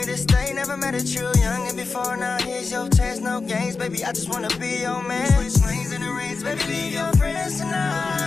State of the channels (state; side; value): quieter; right; 4.4 dB